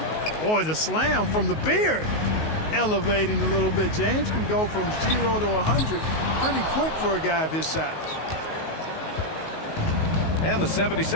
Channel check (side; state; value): right; late; 19 ms